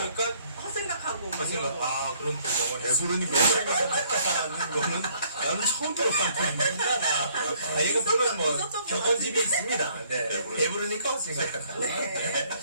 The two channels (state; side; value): inverted; both; correlation -0.63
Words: 헛생각하고 뭐 이런 생각. 거. 그런 거 영어를 배부르니까 하는 거는 나는 처음 들어봤는데. 얘가 보면 뭐 있었던 것 격언집이 있습니다. 네. 배부르니까. 배부르니까 생각한다. 네.